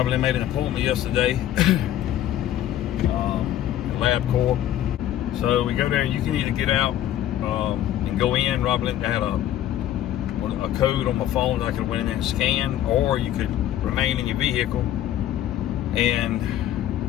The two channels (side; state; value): right; quieter; 12.0 dB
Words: made an appointment yesterday, Lab Corp. So we go there, and you can either get out and go in. Robert had a code on my phone that I could went in there and scan, or you could remain in your vehicle and